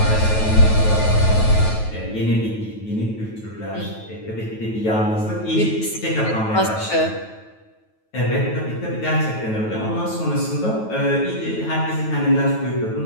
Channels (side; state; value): right; late; 9.2 ms